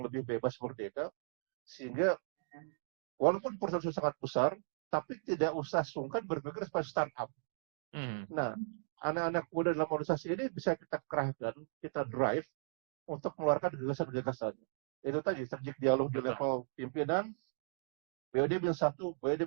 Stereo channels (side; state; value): left; silent; digital silence